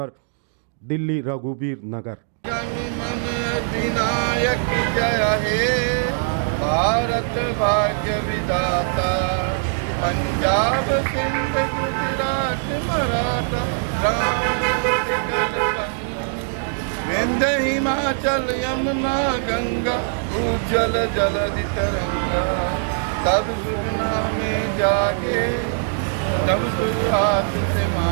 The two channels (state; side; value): silent; left; digital silence